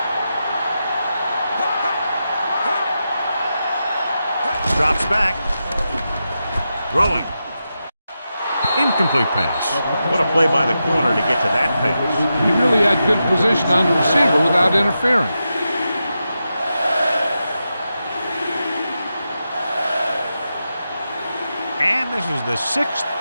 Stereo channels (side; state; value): both; inverted; correlation -0.89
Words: Drops back. Throwing. Incomplete pass. What a play by the corner to get to that pass. He really had good position on the receiver without interfering. And this is the 6th